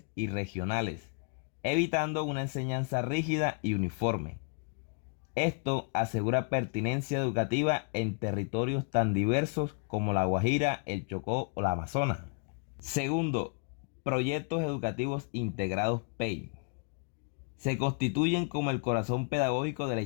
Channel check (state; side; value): quieter; right; 34.4 dB